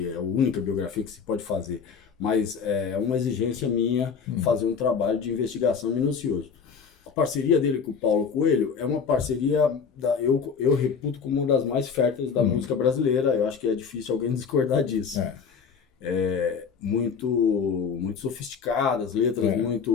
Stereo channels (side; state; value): right; quieter; 6.1 dB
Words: é a única biografia que se pode fazer, mas é uma exigência minha fazer um trabalho de investigação minucioso. A parceria dele com o Paulo Coelho é uma parceria, eu reputo como uma das mais férteis da música brasileira. Eu acho que é difícil alguém discordar disso. Muito, muito sofisticadas, letras